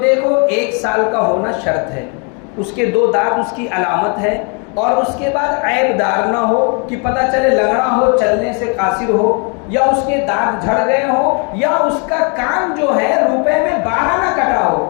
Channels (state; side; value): quieter; right; 36.4 dB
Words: 1 سال کا ہونا شرط ہے، اس کے 2 دانت اس کی علامت ہے، اور اس کے بعد عیب دار نہ ہو کہ پتہ چلے لنگڑا ہو، چلنے سے قاصر ہو، یا اس کے دانت جھڑ گئے ہو، یا اس کا کان جو ہے روپے میں 12 نہ کٹا